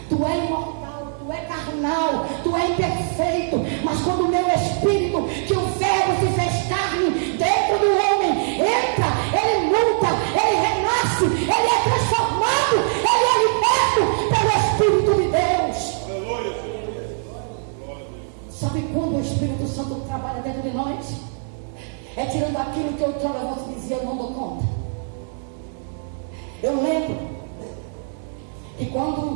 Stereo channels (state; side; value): silent; left; 64 dB below the other